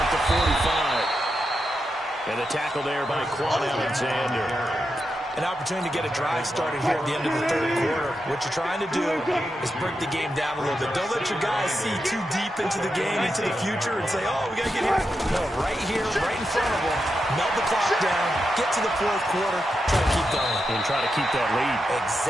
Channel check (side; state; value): both; normal; correlation 0.87